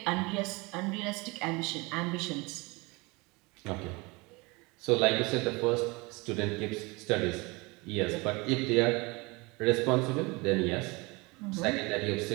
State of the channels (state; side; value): quieter; left; 25.7 dB